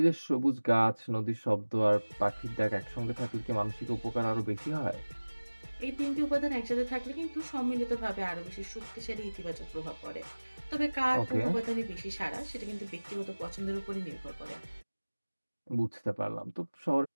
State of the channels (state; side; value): inverted; both; correlation -1.00